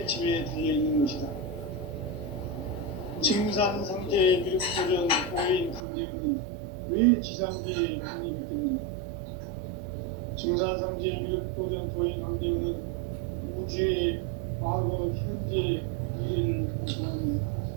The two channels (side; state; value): left; drops out; at 5.8 s